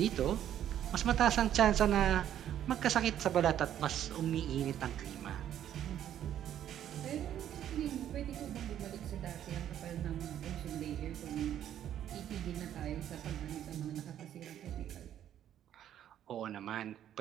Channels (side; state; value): left; quieter; 10.8 dB